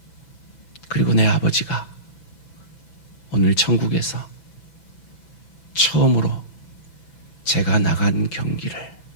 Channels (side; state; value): right; late; 6.0 ms